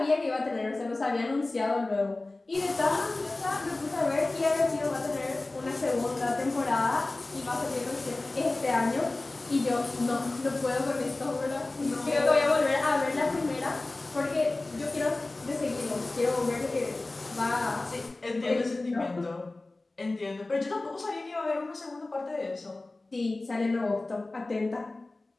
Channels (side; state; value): right; quieter; 3.0 dB